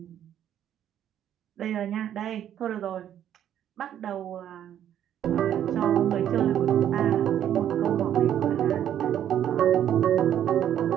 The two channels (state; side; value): quieter; left; 10.4 dB